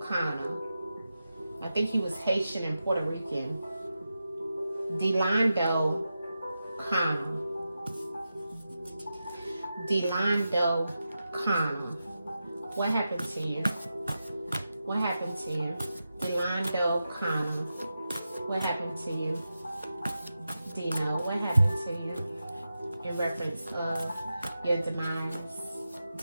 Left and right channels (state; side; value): inverted; both; correlation -0.91